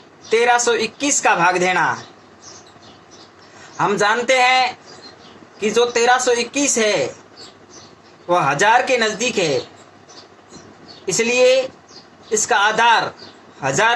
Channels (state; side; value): identical; both; correlation 1.00